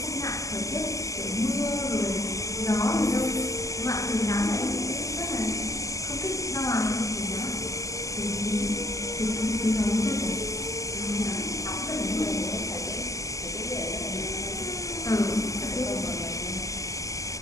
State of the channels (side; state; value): right; late; 0.16 ms